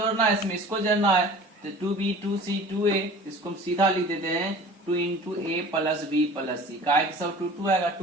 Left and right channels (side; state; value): both; normal; correlation 0.43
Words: है, इसमें इसको जोड़ना है, तो 2B 2C 2A, इसको हम सीधा लिख देते हैं 2 into A plus B plus C। का सब 2 2 आएगा,